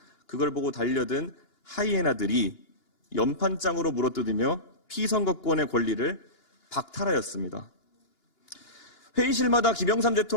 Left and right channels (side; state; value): right; late; 2.9 ms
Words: 그걸 보고 달려든 하이에나들이 연판장으로 물어뜯으며 피선거권의 권리를 박탈하였습니다. 회의실마다 김영삼